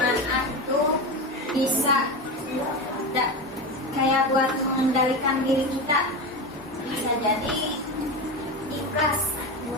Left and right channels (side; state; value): both; normal; correlation 0.21